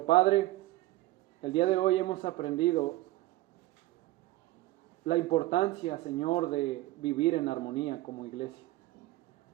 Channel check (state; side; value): quieter; left; 17.8 dB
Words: Padre, el día de hoy hemos aprendido la importancia, Señor, de vivir en armonía como iglesia.